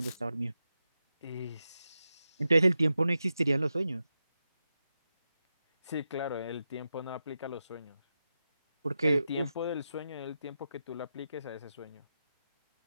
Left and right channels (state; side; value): inverted; both; correlation -0.89